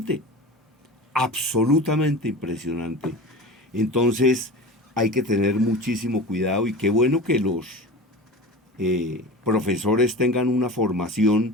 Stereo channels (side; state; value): both; normal; correlation 0.32